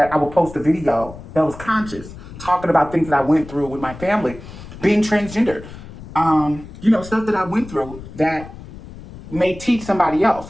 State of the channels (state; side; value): noise; left; rumble, 15 dB below the sound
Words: I would post a video that was conscious, talking about things that I went through with my family, being transgendered, stuff that I went through that may teach somebody